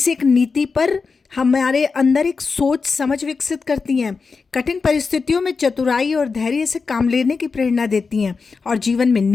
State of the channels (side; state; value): right; quieter; 4.8 dB